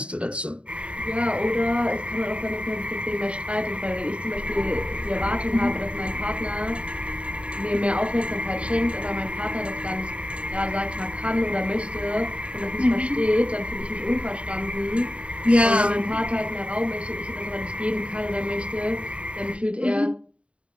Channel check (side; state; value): left; late; 0.060 ms